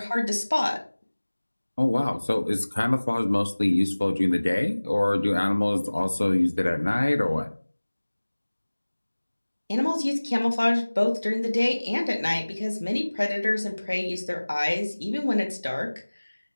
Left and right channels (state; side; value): inverted; both; correlation -1.00